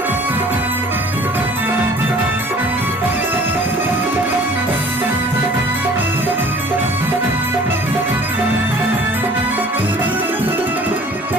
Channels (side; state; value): both; normal; correlation 0.51